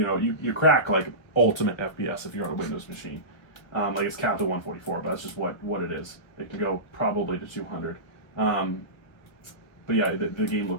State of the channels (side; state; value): right; late; 1.4 ms